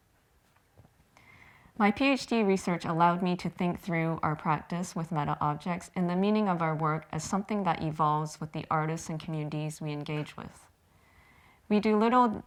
My PhD research allowed me to think through our practice with meta objects and the meaning of our work as something that evolves with the artists and communities we engage with. We do little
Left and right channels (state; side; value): identical; both; correlation 1.00